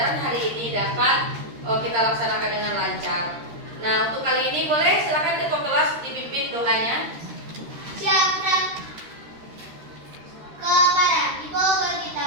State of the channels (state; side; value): late; left; 13 ms